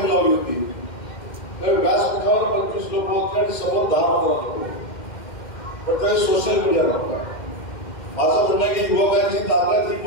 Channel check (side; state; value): right; late; 2.1 ms